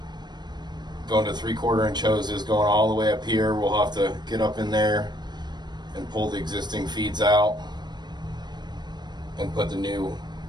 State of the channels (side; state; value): left; late; 0.21 ms